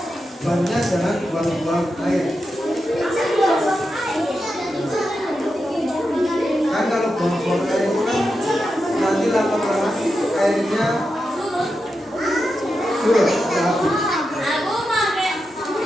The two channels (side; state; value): both; normal; correlation 0.88